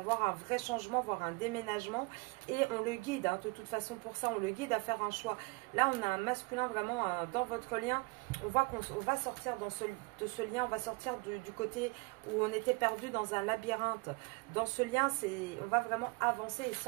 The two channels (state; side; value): quieter; left; 27.4 dB